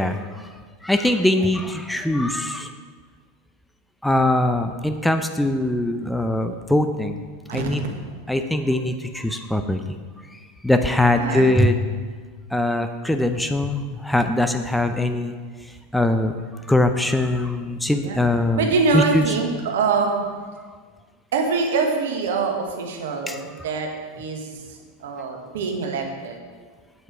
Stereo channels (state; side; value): normal; both; correlation 0.56